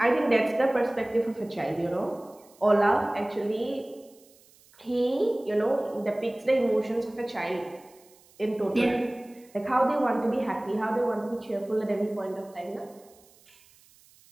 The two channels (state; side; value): noise; right; hiss, 28 dB below the sound